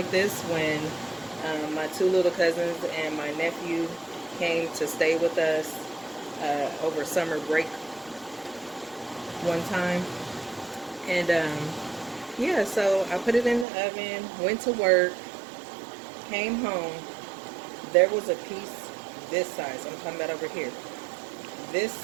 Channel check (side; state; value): left; drops out; at 13.7 s